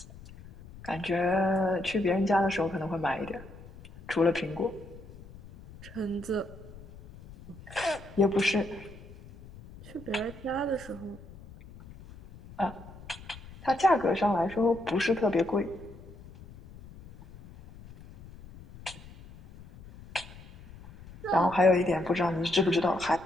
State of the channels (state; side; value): noise; left; rumble, 18 dB below the sound